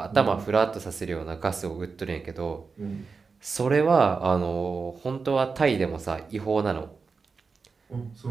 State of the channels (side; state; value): left; quieter; 4.8 dB